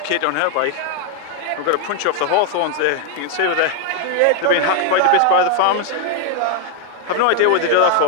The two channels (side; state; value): both; different; correlation 0.00